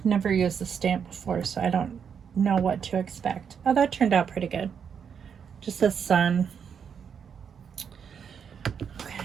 never used the stamp before, so I don't know what to expect. Oh, that turned out pretty good. Just the sun.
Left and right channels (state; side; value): quieter; left; 7.2 dB